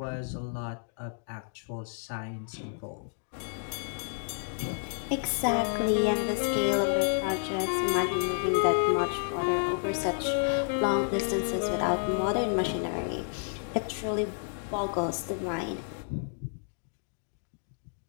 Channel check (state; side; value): silent; right; digital silence